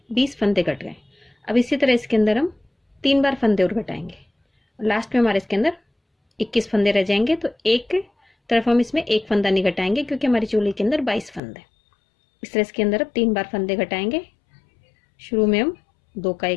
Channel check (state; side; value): drops out; right; at 11.4 s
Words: 20 फंदे घट गए। अब इसी तरह इसके अंदर हम 3 बार फंदे और घटाएंगे और लास्ट में हमारे इसके अंदर 21 फंदे रह जाएंगे। तो एक तरफ हम इसमें एक फंदा नहीं घटाएंगे क्योंकि हमारी चोली के अंदर 22 फंदे। इस तरह इसके अंदर अब 3 बार फंदे घटाएंगे। शुरू में हम 2 का